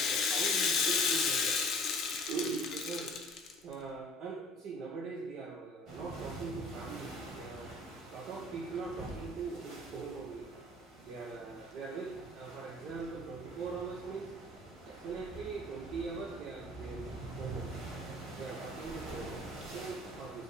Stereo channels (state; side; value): normal; both; correlation 0.50